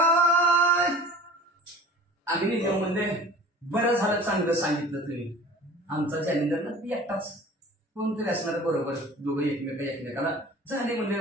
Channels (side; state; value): both; normal; correlation 0.42